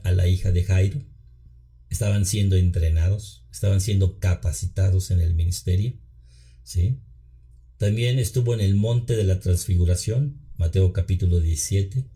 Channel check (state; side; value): identical; both; correlation 1.00